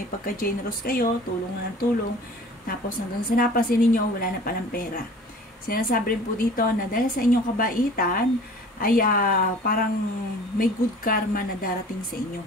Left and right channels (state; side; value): normal; both; correlation 0.45